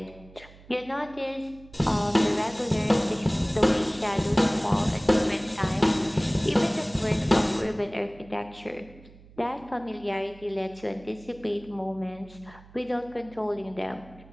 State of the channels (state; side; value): noise; right; hum, 22 dB below the sound